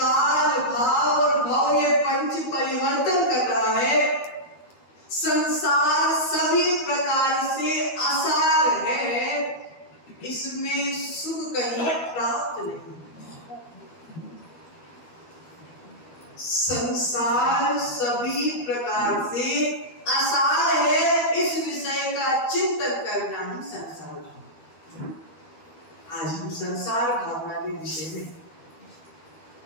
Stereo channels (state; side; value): late; right; 12 ms